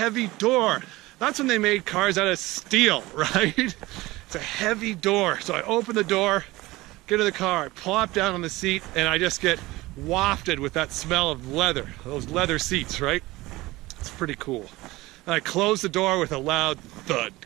door. That's when they made cars out of steel, right? It's a heavy door. So I open the door, get in the car, I plop down on the seat, and I just get wafted with that smell of leather, those leather seats, right? It's pretty cool. And I close the door with a loud thud.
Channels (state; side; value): quieter; left; 19.8 dB